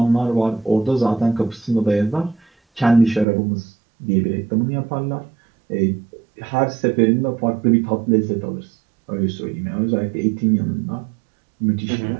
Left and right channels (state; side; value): drops out; left; at 3.2 s